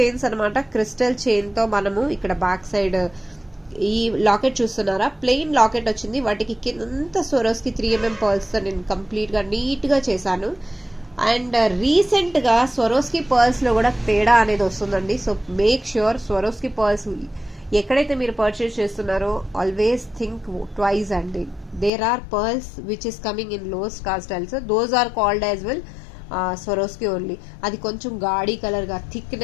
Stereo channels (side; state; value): right; drops out; at 21.9 s